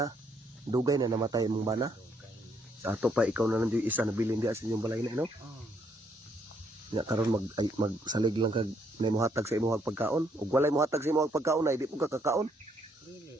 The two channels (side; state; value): both; normal; correlation 0.71